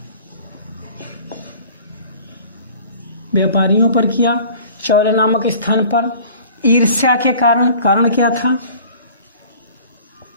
चौल नामक स्थान पर। ईर्ष्या के कारण क्या था?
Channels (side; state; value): both; inverted; correlation -0.47